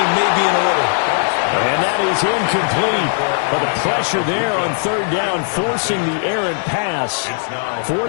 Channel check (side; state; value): right; silent; digital silence